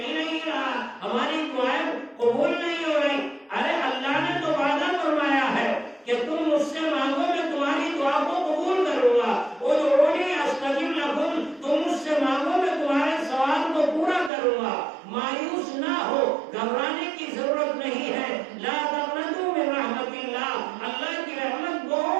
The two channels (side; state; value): left; drops out; at 14.3 s